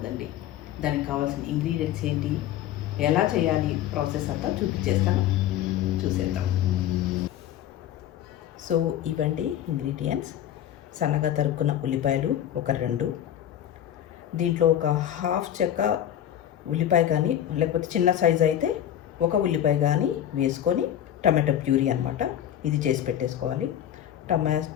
దానికి కావాల్సిన ఇంగ్రీడియంట్స్ ఏంటి, ఎలా చేయాలి, ప్రాసెస్ అంతా చూపించేస్తాను. చూసేద్దాం. సో ఇవండి ఇంగ్రీడియంట్స్. సన్నగా తరుక్కున్న ఉల్లిపాయలు ఒక 2, దీంట్లో ఒక హాఫ్ చెక్క ఉల్లిపాయ కానీ లేకపోతే చిన్న సైజు అయితే ఒక ఉల్లిపాయ కానీ వేసుకొని టమాటో ప్యూరీ అనమాట, ఇది చేసి పెట్టేసుకోవాలి.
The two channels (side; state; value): right; quieter; 11.1 dB